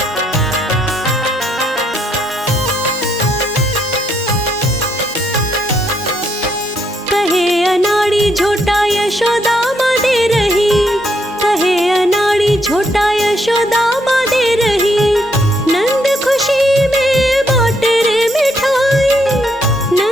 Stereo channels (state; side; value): normal; both; correlation 0.74